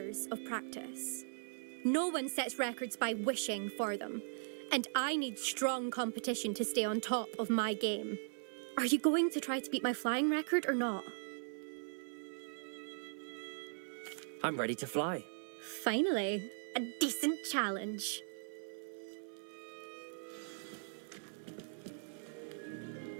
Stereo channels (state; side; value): silent; left; 52 dB below the other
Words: of practice. No one sets records by wishing for them, and I need strong competition to stay on top of my game. Are you going to try to beat my flying record or not? I'm ready to fly. Finally, a decent challenge.